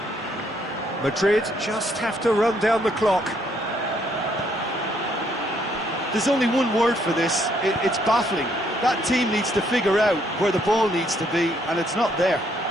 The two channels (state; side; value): normal; both; correlation 0.70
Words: Madrid just have to run down the clock. There's only one word for this, it's baffling. That team needs to figure out where the ball needs to be, and it's not there.